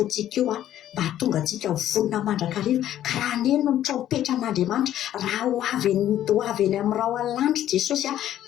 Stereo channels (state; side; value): quieter; right; 11.9 dB